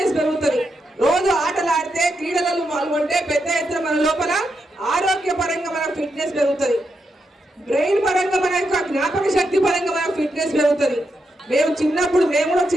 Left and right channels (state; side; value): normal; both; correlation 0.84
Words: పెరుగుతుంది. రోజు ఆటలు ఆడితే క్రీడలలో పాల్గొంటే పెద్ద ఎత్తున మన లోపల ఆరోగ్య పరంగా మన ఫిట్నెస్ పెరుగుతుంది. బ్రెయిన్ పరంగా మన యొక్క జ్ఞాపక శక్తి పరంగా మన ఫిట్నెస్ పెరుగుతుంది. మేము కూడా